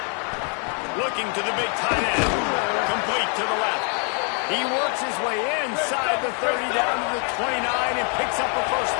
Looking to the big tight end. Complete to the left. He works his way inside the 30 down to the 29 and picks up a first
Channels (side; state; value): right; quieter; 39.7 dB